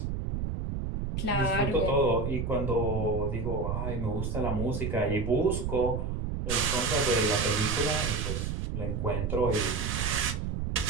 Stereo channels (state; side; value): noise; right; rumble, 2 dB below the sound